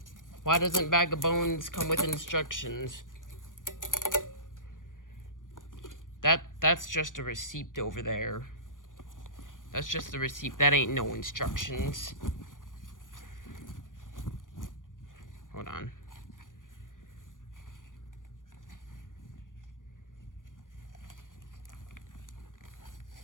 Why doesn't Bag of Bones come with instructions? That's just a receipt over there. That's just a receipt. That ain't no instructions. Hold on.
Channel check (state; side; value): late; right; 0.88 ms